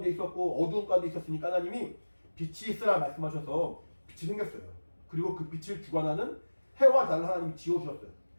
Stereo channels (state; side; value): inverted; both; correlation -1.00